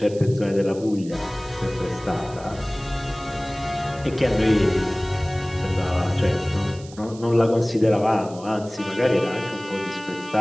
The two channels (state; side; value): noise; right; hiss, 21 dB below the sound